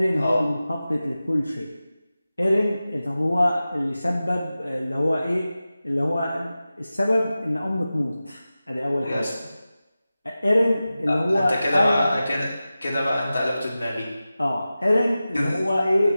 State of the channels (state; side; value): inverted; both; correlation -0.95